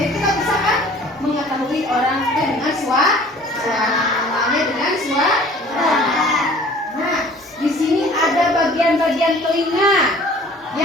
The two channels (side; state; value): both; normal; correlation 0.50